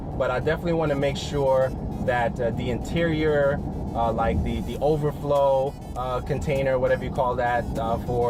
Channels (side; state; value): both; identical; correlation 1.00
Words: But I definitely want to make sure that the interior, like the overflow container, whatever you call that, I